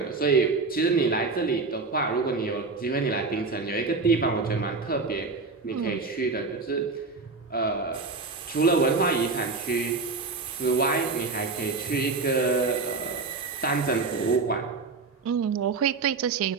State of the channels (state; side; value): quieter; left; 4.1 dB